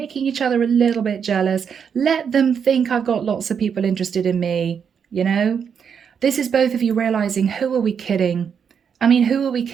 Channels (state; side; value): quieter; left; 7.1 dB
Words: each other a little bit jealous, let them think I've got lots of people interested in me, you know? This is both of you realizing, who are we kidding? I mean, who are we